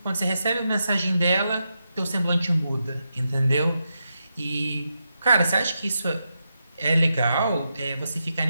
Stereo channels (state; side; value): inverted; both; correlation -0.86